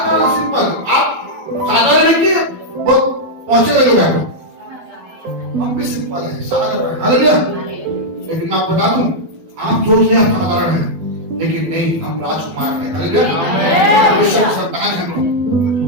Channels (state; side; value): late; left; 12 ms